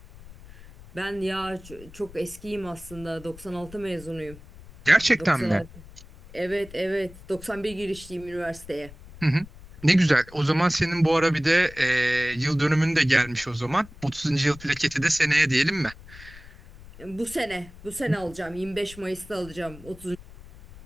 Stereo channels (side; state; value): left; noise; rumble, 19 dB below the sound